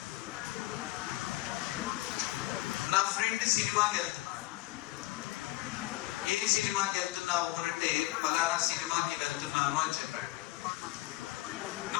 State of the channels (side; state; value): right; quieter; 19.1 dB